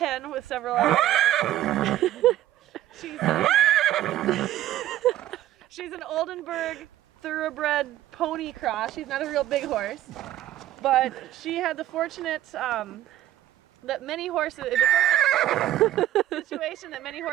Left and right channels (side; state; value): left; quieter; 13.3 dB